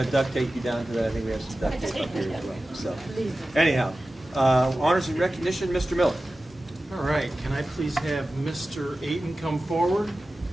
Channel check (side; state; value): both; normal; correlation 0.95